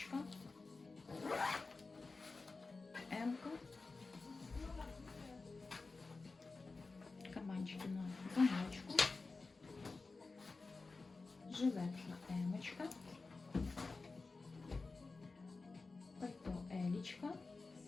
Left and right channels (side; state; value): right; quieter; 3.8 dB